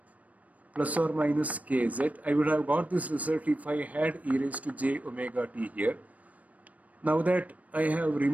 plus or minus kz. I would have got this result if I had e raised to j omega t here. Now that I have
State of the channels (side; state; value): left; late; 0.070 ms